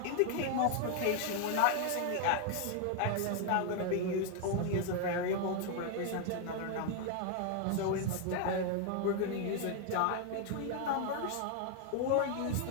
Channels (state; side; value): different; both; correlation 0.00